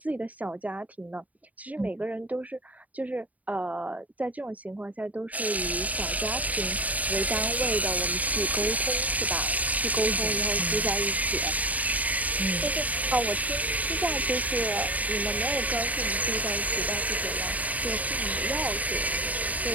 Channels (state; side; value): late; left; 0.073 ms